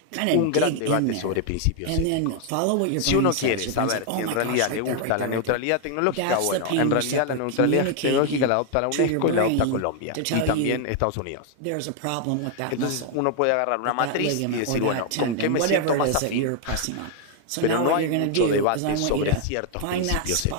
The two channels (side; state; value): both; different; correlation 0.00